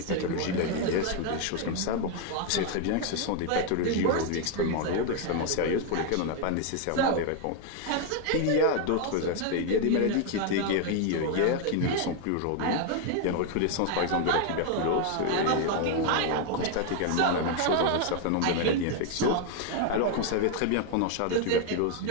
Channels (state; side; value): different; both; correlation 0.01